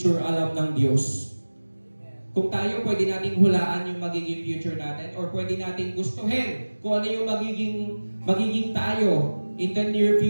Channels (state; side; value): inverted; both; correlation -1.00